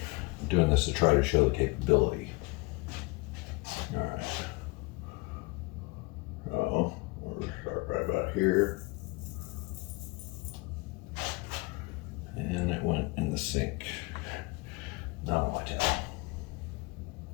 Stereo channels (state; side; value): quieter; right; 25.5 dB